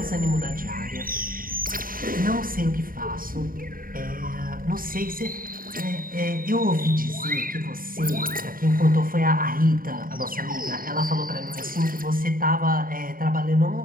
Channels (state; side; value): late; left; 0.41 ms